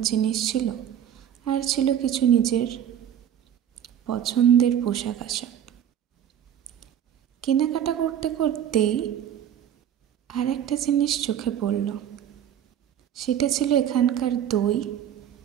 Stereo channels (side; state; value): left; quieter; 9.9 dB